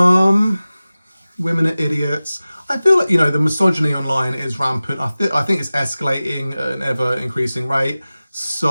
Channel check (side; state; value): both; inverted; correlation -0.97